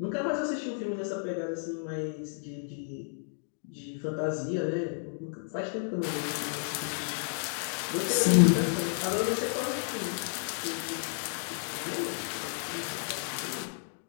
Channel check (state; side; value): silent; right; digital silence